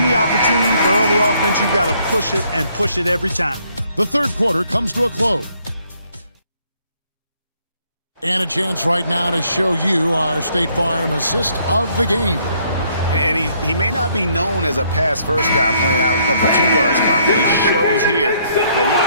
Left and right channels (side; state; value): both; inverted; correlation -0.68